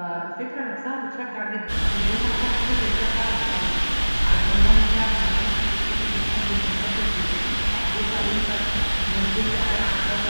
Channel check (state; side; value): inverted; both; correlation -1.00